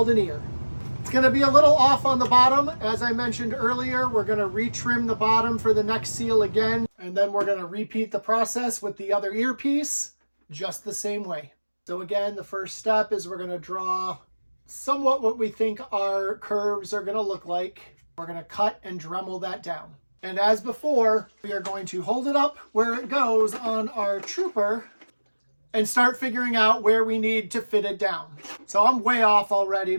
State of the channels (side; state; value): both; inverted; correlation -1.00